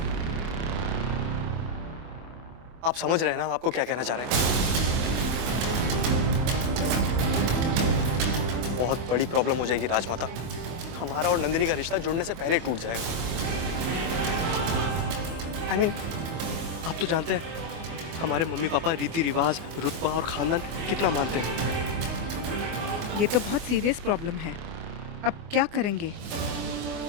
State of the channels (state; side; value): late; left; 24 ms